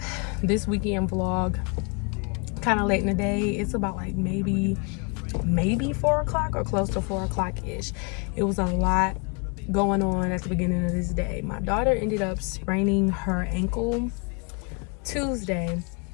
this weekend vlog kind of late in the day. It's about like maybe 4 o'clock or close to 4 o'clock ish. It was a lot going on at the beginning of this day. My daughter ended up spraining her ankle Tuesday,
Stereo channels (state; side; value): quieter; right; 33.2 dB